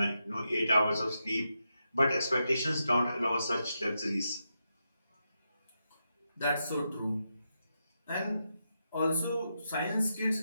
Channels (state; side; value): inverted; both; correlation -0.86